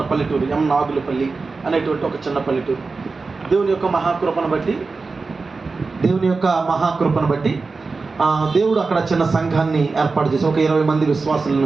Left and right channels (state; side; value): quieter; left; 4.1 dB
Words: పల్లెటూరు, ఎం నాగులపల్లి అనేటువంటి ఒక చిన్న పల్లెటూరు. దేవుని యొక్క మహాకృపను బట్టి దేవుడు అక్కడ చిన్న సంఘాన్ని ఏర్పాటు చేసి ఒక 20 మంది